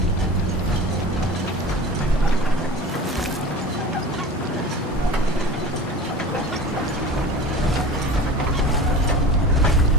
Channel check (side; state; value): both; normal; correlation 0.36